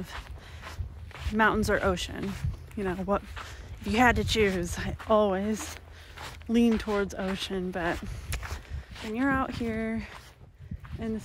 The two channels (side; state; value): both; identical; correlation 1.00